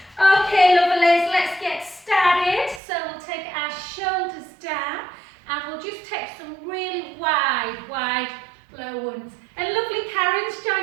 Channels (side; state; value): left; drops out; at 2.8 s